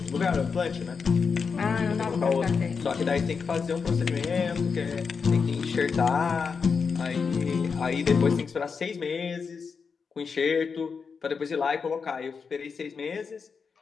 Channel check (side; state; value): right; quieter; 5.5 dB